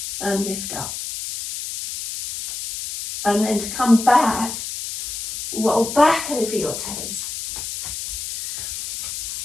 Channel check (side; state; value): left; noise; hiss, 7 dB below the sound